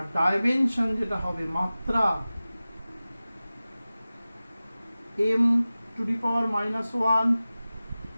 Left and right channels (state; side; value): inverted; both; correlation -0.97